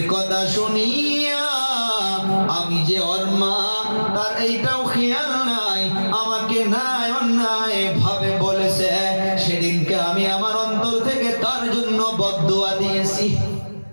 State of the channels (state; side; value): inverted; both; correlation -1.00